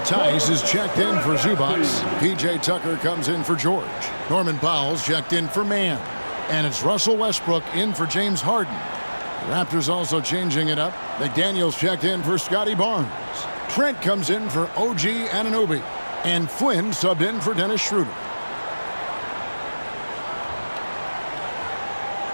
Tice is checked in for Zubac. P.J. Tucker comes in for George. Norman Powell's checked in for Mann. And it's Russell Westbrook in for James Harden. The Raptors also changing it up. McDaniels checked in for Scotty Barnes. Trent comes in for OG Anunoby. And Flynn subbed in for Dennis Schroeder.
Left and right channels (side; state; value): both; inverted; correlation -1.00